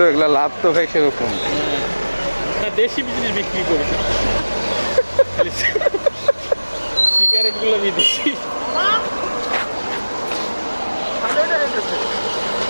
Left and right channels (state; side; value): inverted; both; correlation -1.00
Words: এগুলা লাভ তো ভাই সেরকম। না, দেশি বিজিনেস বিক্রি করি, সিগারেট গুলো বিদেশি।